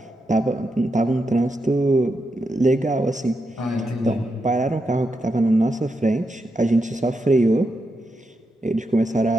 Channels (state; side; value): normal; both; correlation 0.85